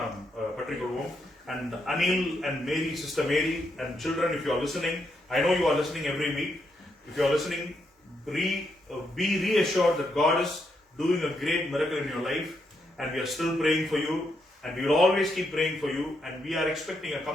நாம் பற்றிக்கொள்வோம். And Anil and Mary, Sister Mary and children, if you are listening, I know you are listening every week. If you are listening, be reassured that God is doing a great miracle in your life, and we are still praying for you, and we will always keep praying for you, and we are expecting a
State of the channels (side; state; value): both; normal; correlation 0.79